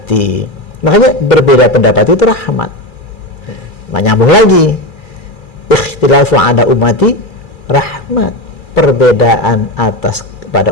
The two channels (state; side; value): late; right; 2.4 ms